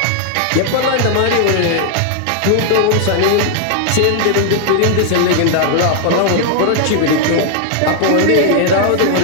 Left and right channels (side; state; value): both; different; correlation 0.00